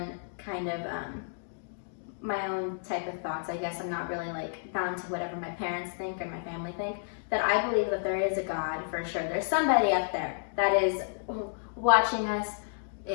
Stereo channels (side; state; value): right; silent; digital silence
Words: kind of my own type of thoughts, I guess I'm not really like bound to whatever my parents think or my family think, that I believe that there is a God for sure. There's somebody up there that is watching us,